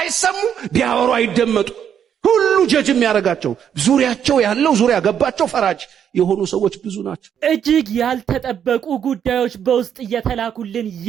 ቢያወሩ አይደመጡ። ሁሉ ጀጅ የሚያረጋቸው ዙሪያቸው ያለው ዙሪያ ገባቸው ፈራጅ የሆኑ ሰዎች ብዙ ናቸው። እጅግ ያልተጠበቁ ጉዳዮች በውስጥ እየተላኩልን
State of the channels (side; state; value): left; quieter; 8.7 dB